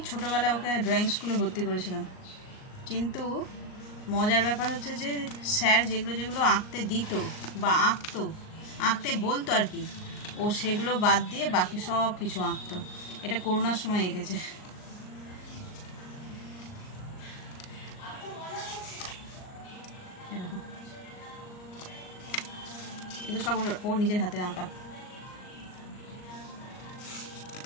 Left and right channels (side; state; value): right; late; 38 ms